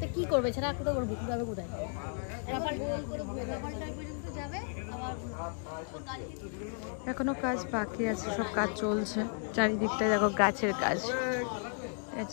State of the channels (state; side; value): silent; right; 55 dB below the other